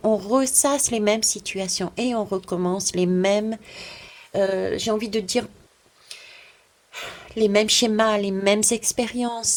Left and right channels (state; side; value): identical; both; correlation 1.00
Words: On ressasse les mêmes situations et on recommence les mêmes, j'ai envie de dire, les mêmes schémas, les mêmes